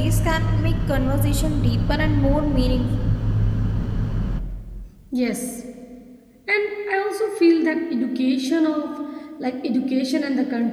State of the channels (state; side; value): identical; both; correlation 1.00